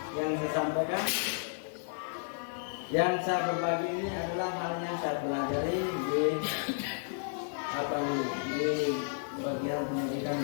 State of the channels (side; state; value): right; silent; digital silence